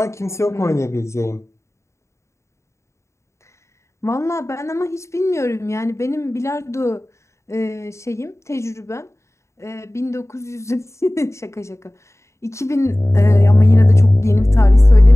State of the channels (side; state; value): right; late; 0.14 ms